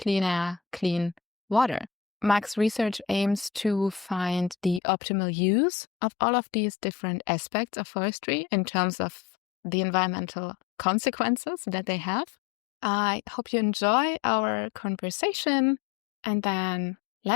air, clean water. Max's research aims to find the optimal use of all of these different aspects of forestry in terms of the environmental consequences that they have. I hope you enjoy our conversation, and then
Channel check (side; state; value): right; drops out; at 4.8 s